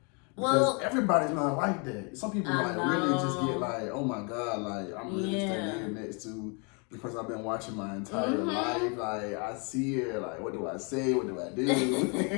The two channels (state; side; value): quieter; right; 34.2 dB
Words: because everybody's not like that. Some people really just get like, oh my God, like I'm really standing here next to the person I've been watching my entire life. Like I see her, like what do I say? What do I do?